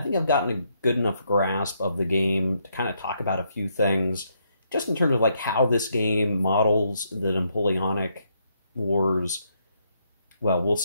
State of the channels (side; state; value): both; inverted; correlation -0.75